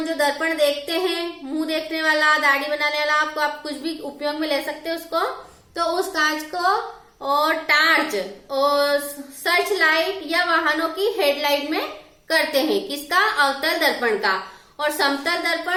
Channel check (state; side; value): identical; both; correlation 1.00